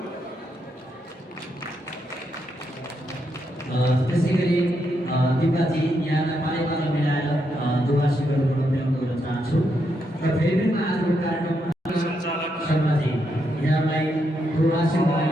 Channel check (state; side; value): normal; both; correlation 0.80